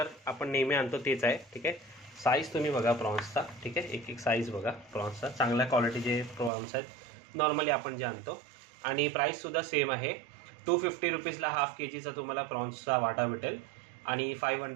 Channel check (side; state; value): left; drops out; at 6.5 s